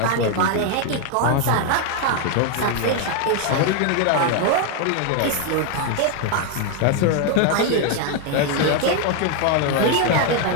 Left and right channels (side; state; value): both; different; correlation 0.01